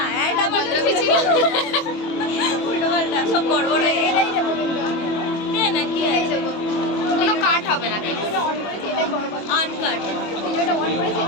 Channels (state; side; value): late; right; 25 ms